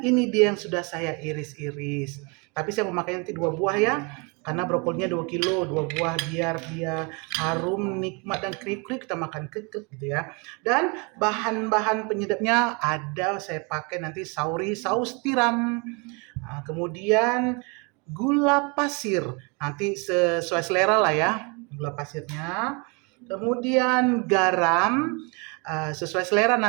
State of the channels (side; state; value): left; quieter; 31.4 dB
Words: ini dia yang sudah saya iris-iris. Tapi saya memakai nanti 2 buah ya, karena brokolinya 2 kilo, 2 buah biar dia harum, nikmat dan kriuk-kriuk kita makan kekek gitu ya. Dan bahan-bahan penyedapnya ada, saya pakai nanti saus tiram. Nah, kemudian gula pasir, nanti sesuai selera lah ya gula pasirnya. Kemudian garam sesuai selera,